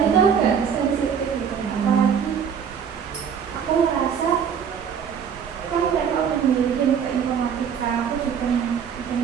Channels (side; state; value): left; quieter; 7.5 dB